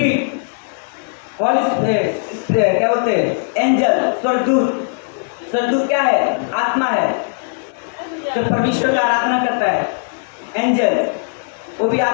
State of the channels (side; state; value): right; silent; 55 dB below the other